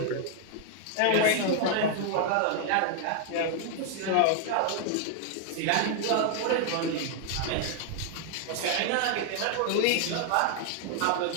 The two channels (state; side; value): different; both; correlation 0.00